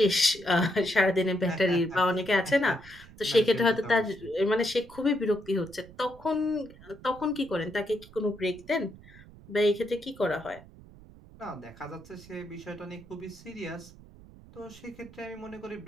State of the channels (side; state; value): right; noise; rumble, 21 dB below the sound